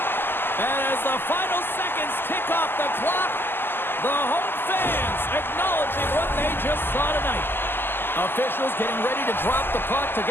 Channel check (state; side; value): late; right; 0.10 ms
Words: And as the final seconds tick off the clock, the home fans acknowledging what they just saw tonight. Officials getting ready to drop the puck to